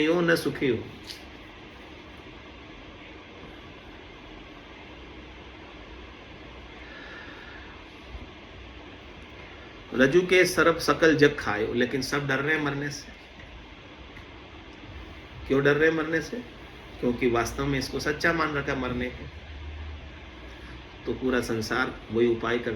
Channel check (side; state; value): both; identical; correlation 1.00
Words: हो न सुखी हो। रज्जु के सर्प सकल जग खायो, लेकिन सब डर रहे हैं मरने से। क्यों डर रहे हैं मरने से? क्योंकि वास्तव में इसको सच्चा मान रखा मरने को। तो पूरा संसार वही उपाय